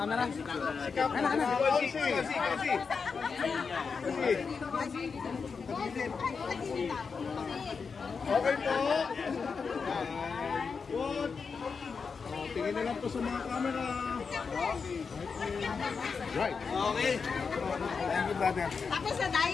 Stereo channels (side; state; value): right; quieter; 5.3 dB